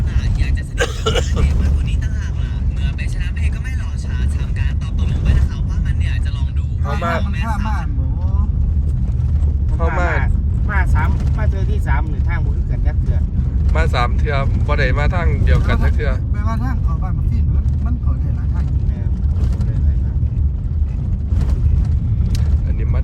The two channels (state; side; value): identical; both; correlation 1.00